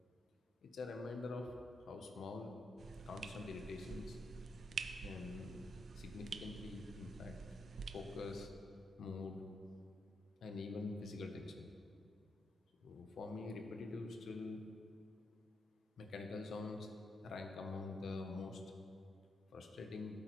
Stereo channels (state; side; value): normal; both; correlation 0.80